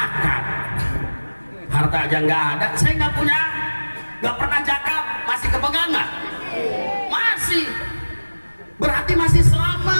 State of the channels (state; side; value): inverted; both; correlation -1.00